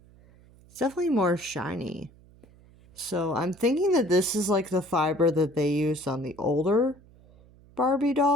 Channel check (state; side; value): noise; right; hum, 26 dB below the sound